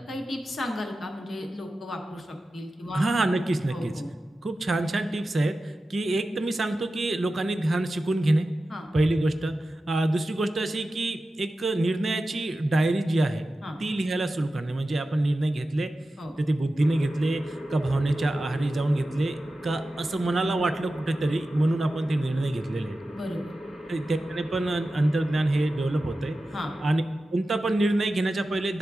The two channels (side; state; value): both; normal; correlation 0.93